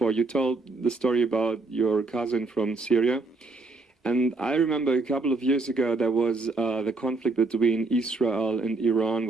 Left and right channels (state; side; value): quieter; left; 3.5 dB